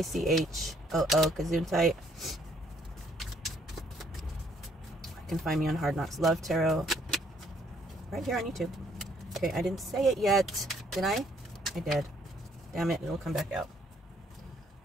Gesundheit. You can find me on Hard Knocks Love Tarot. Right here on YouTube. Okay, I didn't say it yet. Did I? I did. Damn it, it'll come back out.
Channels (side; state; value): both; normal; correlation 0.66